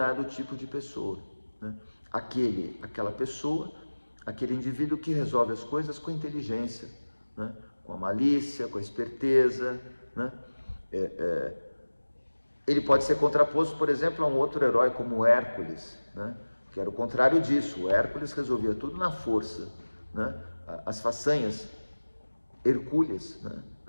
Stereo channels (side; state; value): both; inverted; correlation -1.00